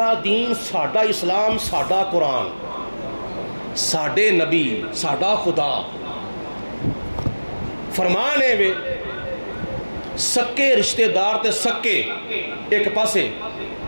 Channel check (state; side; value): inverted; both; correlation -1.00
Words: دین ساڈا اسلام ساڈا قرآن ساڈے نبی ساڈا خدا فرمان ہے وے سکے رشتہ دار تے سکے ایک پاسے